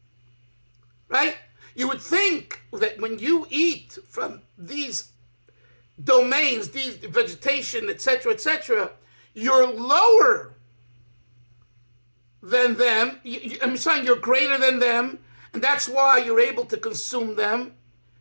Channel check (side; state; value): both; inverted; correlation -1.00